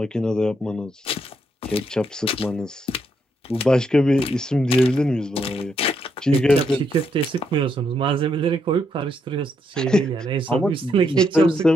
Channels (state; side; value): normal; both; correlation 0.77